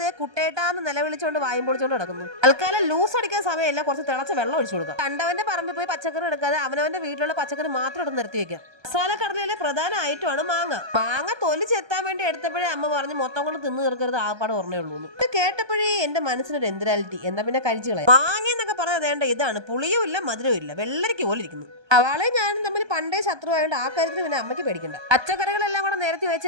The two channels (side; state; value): left; late; 1.2 ms